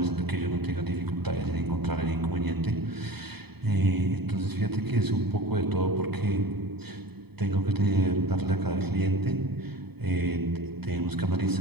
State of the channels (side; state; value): left; late; 0.97 ms